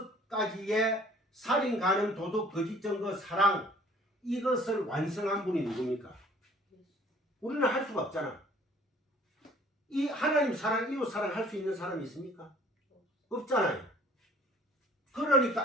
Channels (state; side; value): normal; both; correlation 0.54